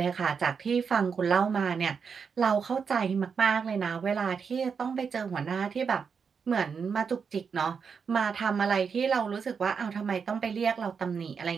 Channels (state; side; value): quieter; left; 6.1 dB